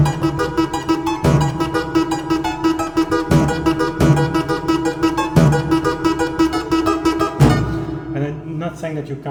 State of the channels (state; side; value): identical; both; correlation 1.00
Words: And I'm not saying that you